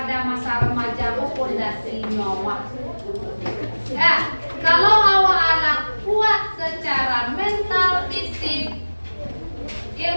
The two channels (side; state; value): both; inverted; correlation -1.00